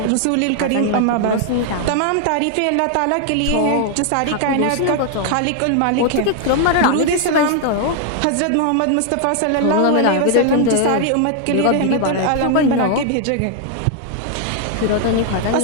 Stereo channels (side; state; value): both; different; correlation 0.00